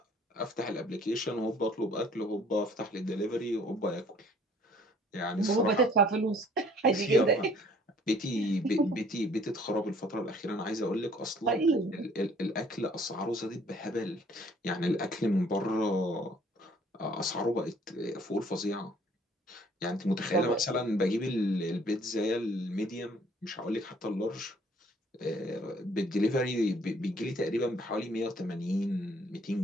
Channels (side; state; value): both; normal; correlation 0.58